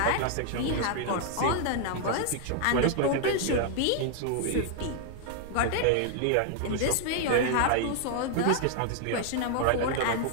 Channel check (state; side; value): different; both; correlation 0.00